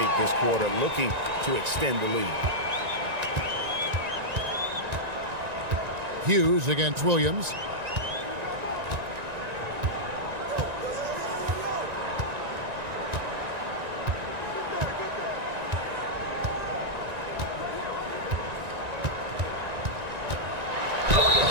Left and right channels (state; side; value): late; left; 1.9 ms